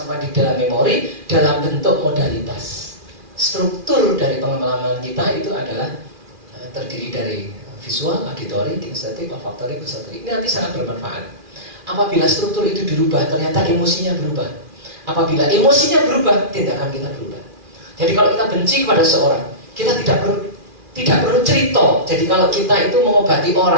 di dalam memori dalam bentuk modalitas. Struktur dari pengalaman kita itu adalah terdiri dari visual, auditory, kinestetik, olfaktori, gustatori. Ini nanti sangat bermanfaat. Apabila struktur itu dirubah, ternyata emosinya berubah. Apabila emosinya berubah, tindakan kita berubah. Jadi kalau kita benci kepada seorang, kita tidak perlu cerita. Jadi kalau kita itu mengobati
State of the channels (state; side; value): late; left; 2.4 ms